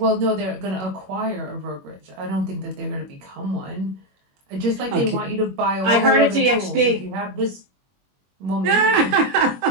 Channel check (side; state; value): left; late; 21 ms